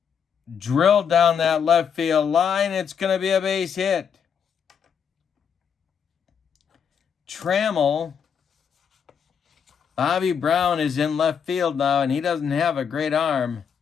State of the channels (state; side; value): quieter; right; 7.2 dB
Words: drilled down that left field line. It's going to be a base hit. Trammell, Bobby Brown is in left field now, and he doesn't have a great arm.